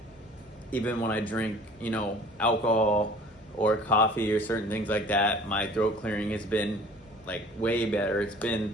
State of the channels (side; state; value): both; normal; correlation 0.48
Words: Even when I drink, alcohol or coffee or certain things like that, my throat clearing has been like way better. It's